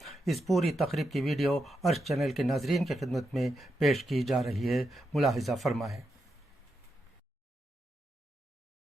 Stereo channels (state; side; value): normal; both; correlation 0.85